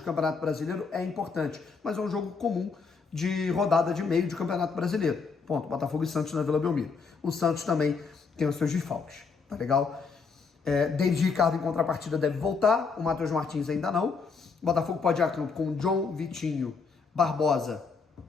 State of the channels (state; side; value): quieter; right; 5.0 dB